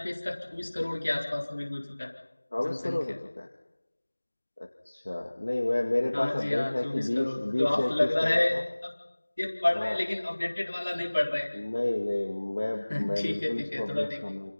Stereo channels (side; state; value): both; inverted; correlation -1.00